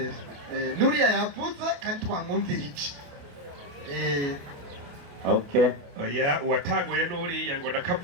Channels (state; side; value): late; left; 28 ms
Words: Nuria yavuze kandi twamwumvira iki. Okay. Oya uwatanguye Nuria ngo